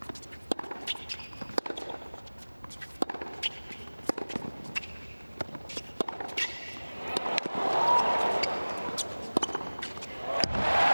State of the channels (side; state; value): both; inverted; correlation -1.00